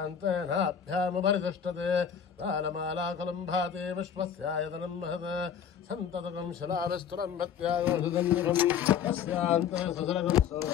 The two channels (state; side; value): quieter; right; 8.0 dB